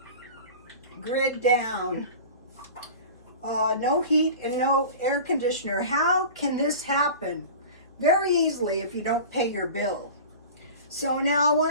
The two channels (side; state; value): both; inverted; correlation -0.37